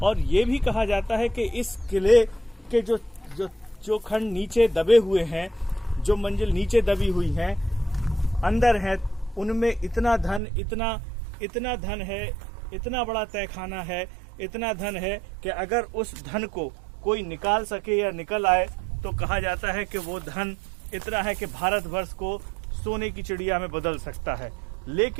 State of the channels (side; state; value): left; drops out; at 10.4 s